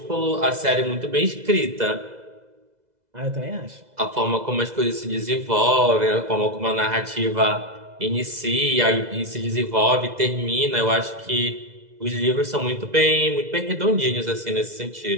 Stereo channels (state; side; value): late; left; 2.0 ms